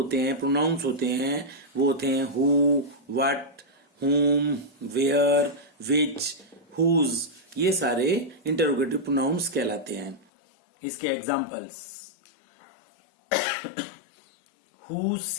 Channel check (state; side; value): drops out; right; at 10.2 s